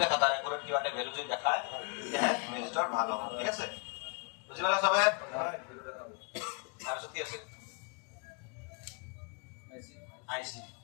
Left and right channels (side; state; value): right; quieter; 32.7 dB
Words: দেখা তাৰ একুৰেট কিবা এটা ভ্যালু যদি দেখায় তেতিয়াহে ৰেজিষ্টাৰ ভাল হ'ব ঠিক আছে বুজি পালা সবে তাৰপিছত কি আছে